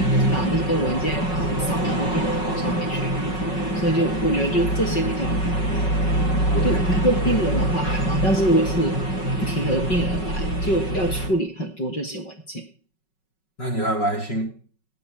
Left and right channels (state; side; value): late; right; 5.4 ms